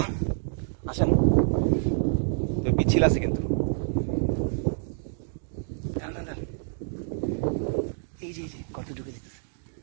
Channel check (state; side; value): silent; left; digital silence